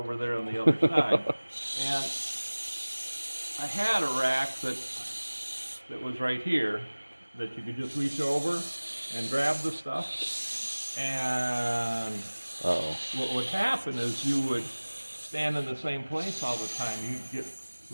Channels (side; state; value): both; inverted; correlation -1.00